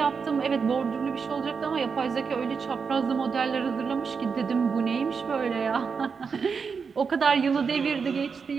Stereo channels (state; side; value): quieter; left; 5.6 dB